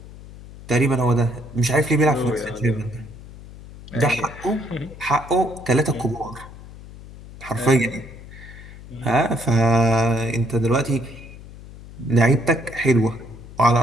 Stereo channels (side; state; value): left; noise; hum, 17 dB below the sound